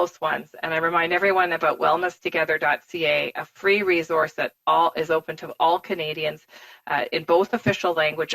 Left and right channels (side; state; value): both; identical; correlation 1.00